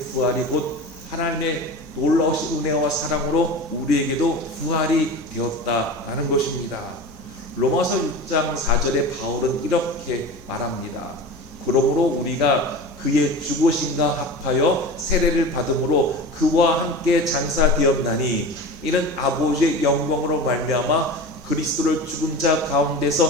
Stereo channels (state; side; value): normal; both; correlation 0.32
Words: 부활이 곧 하나님의 놀라우신 은혜와 사랑으로 우리에게도 부활이 되었다라는 것입니다. 로마서 6장 4절에 바울은 이렇게 말합니다. 그러므로 우리가 그의 죽으심과 합하여 세례를 받음으로 그와 함께 장사되었나니 이는 아버지의 영광으로 말미암아 그리스도를 죽은 자